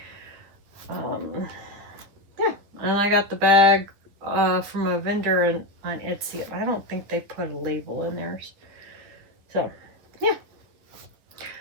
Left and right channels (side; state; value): left; late; 9.8 ms